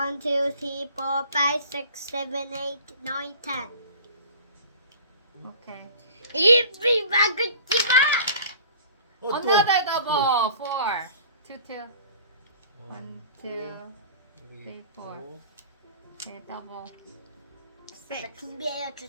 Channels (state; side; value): inverted; both; correlation -0.45